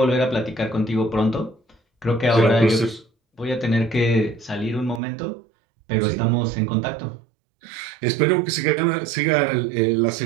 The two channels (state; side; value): drops out; left; at 5.0 s